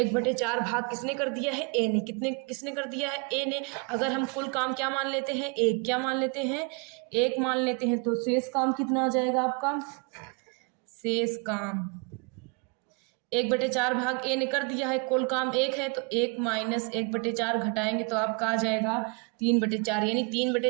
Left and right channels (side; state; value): left; quieter; 33.5 dB